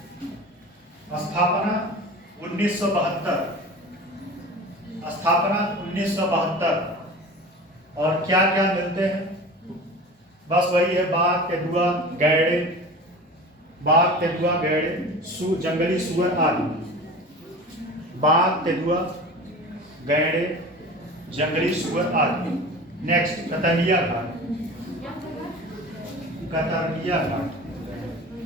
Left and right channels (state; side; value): normal; both; correlation 0.36